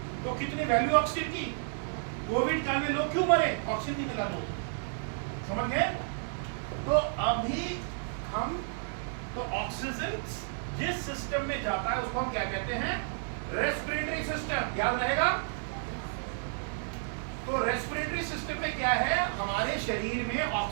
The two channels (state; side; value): silent; left; digital silence